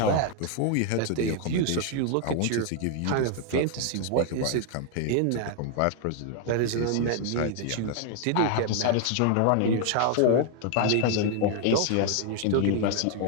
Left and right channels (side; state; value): both; different; correlation 0.00